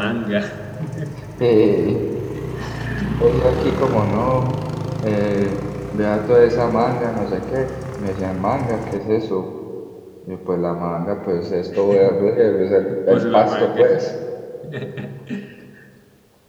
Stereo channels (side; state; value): both; identical; correlation 1.00